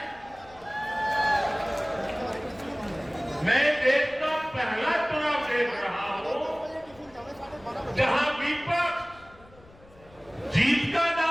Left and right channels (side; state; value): left; noise; rumble, 25 dB below the sound